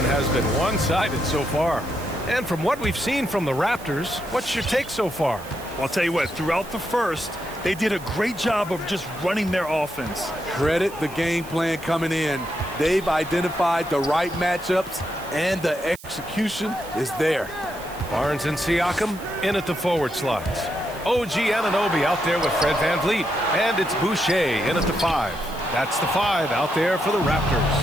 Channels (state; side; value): noise; right; hiss, 18 dB below the sound